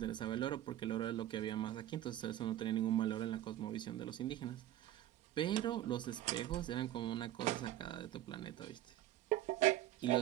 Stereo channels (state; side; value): quieter; left; 13.4 dB